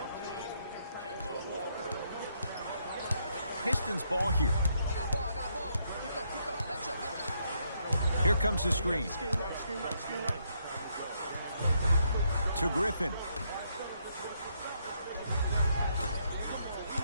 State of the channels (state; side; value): inverted; both; correlation -0.75